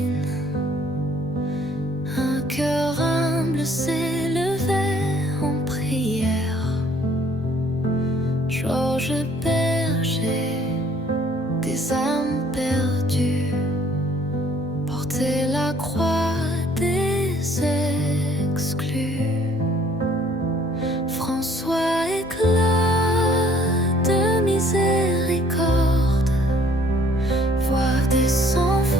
un cœur humble s'élevait en prière. Georges Berger, des âmes perdues, portait la croix des exclus. François éclat de miséricorde, voix des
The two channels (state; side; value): normal; both; correlation 0.60